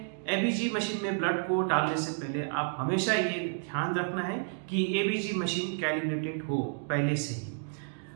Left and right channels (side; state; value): left; silent; digital silence